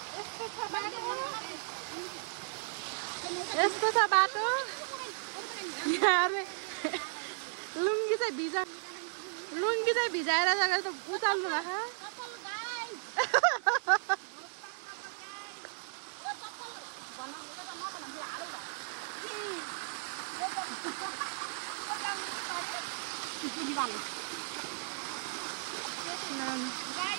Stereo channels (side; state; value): left; silent; digital silence